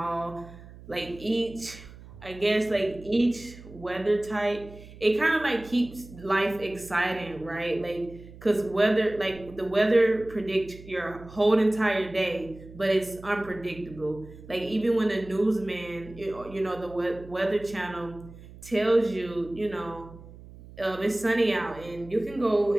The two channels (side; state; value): right; noise; hum, 18 dB below the sound